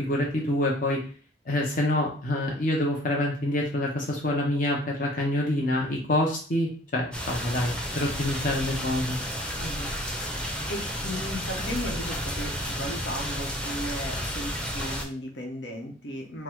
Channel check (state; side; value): normal; both; correlation 0.51